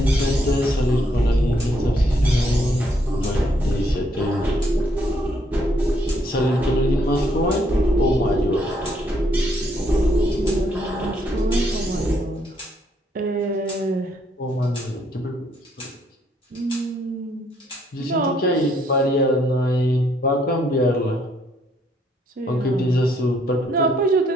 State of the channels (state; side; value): normal; both; correlation 0.70